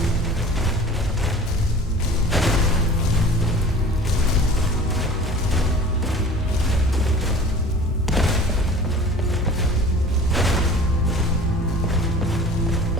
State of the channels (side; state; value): both; normal; correlation 0.43